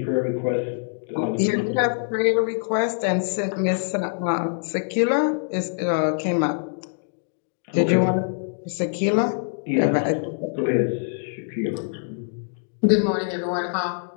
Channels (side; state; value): right; silent; digital silence